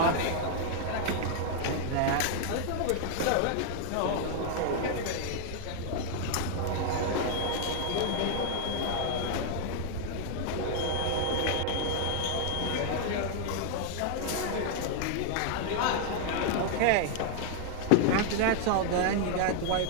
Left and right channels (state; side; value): different; both; correlation 0.00